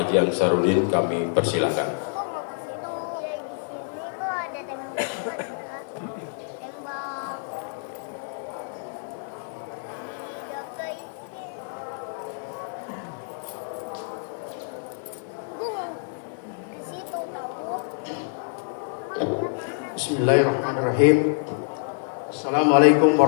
Ansarudin. Kami persilakan. Bismillahirrahmanirrahim. Assalamualaikum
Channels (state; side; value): silent; right; digital silence